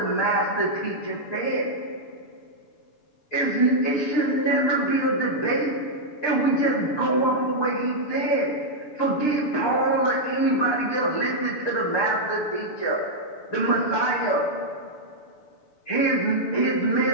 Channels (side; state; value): right; late; 6.7 ms